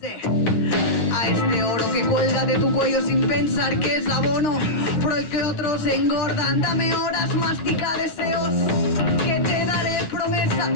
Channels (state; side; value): late; right; 9.4 ms